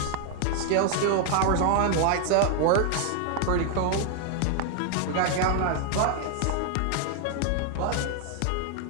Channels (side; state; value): both; different; correlation 0.00